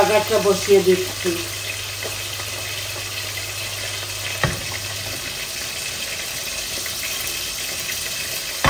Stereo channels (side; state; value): both; identical; correlation 1.00